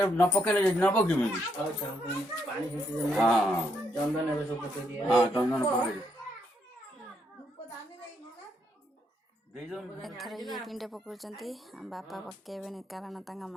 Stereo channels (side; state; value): both; normal; correlation 0.76